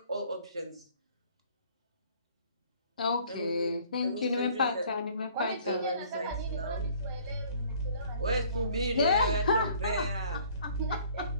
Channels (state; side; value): inverted; both; correlation -0.56